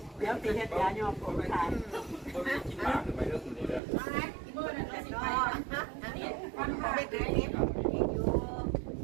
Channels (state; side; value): drops out; left; at 3.8 s